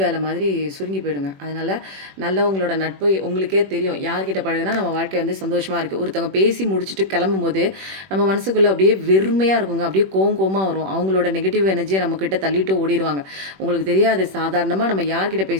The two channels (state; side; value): late; left; 21 ms